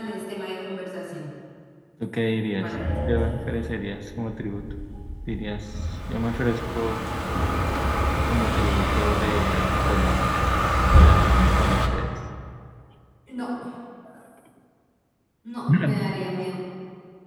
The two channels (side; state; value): both; identical; correlation 1.00